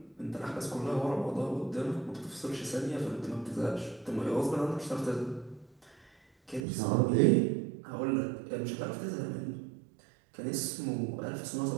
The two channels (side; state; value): left; drops out; at 6.6 s